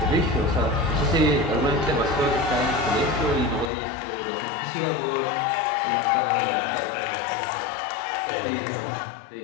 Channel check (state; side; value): drops out; right; at 3.7 s